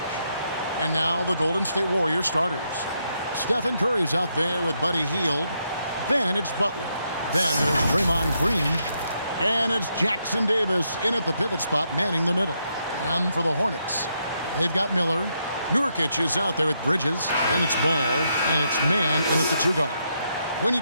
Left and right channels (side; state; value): both; inverted; correlation -0.79